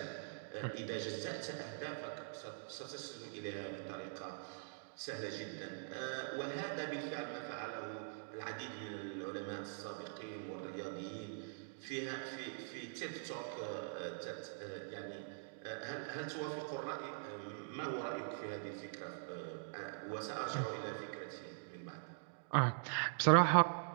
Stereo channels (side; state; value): left; silent; digital silence